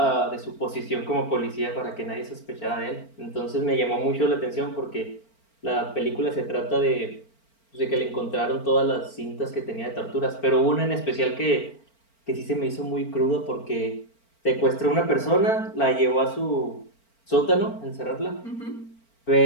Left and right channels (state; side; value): late; right; 4.4 ms